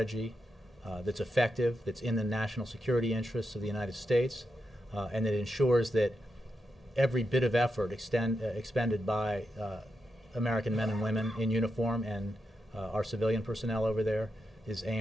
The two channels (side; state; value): both; normal; correlation 0.86